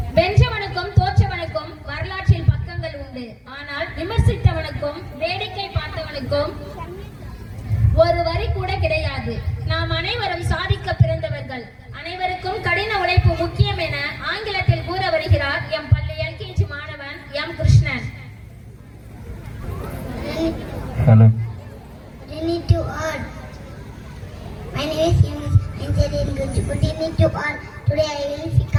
வென்றவனுக்கும் தோற்றவனுக்கும் வரலாற்றில் பக்கங்கள் உண்டு. ஆனால் விமர்சித்தவனுக்கும் வேடிக்கை பார்த்தவனுக்கும் ஒரு வரி கூட கிடையாது. நாம் அனைவரும் சாதிக்க பிறந்தவர்கள். அனைவருக்கும் கடின உழைப்பு முக்கியம் என ஆங்கிலத்தில் கூற வருகிறார் எம் பள்ளி எல்கேஜி மாணவன் M Krishnan. Hello. To all. My name is Yunus. I said in good evening to all. Today I will speak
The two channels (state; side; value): identical; both; correlation 1.00